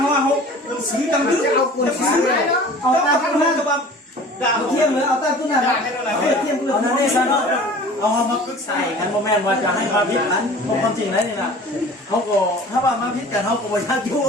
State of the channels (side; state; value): both; normal; correlation 0.44